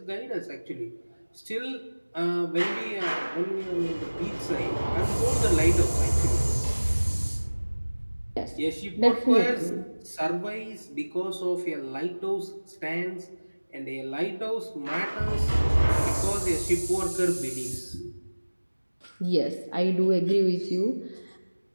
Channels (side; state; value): both; inverted; correlation -1.00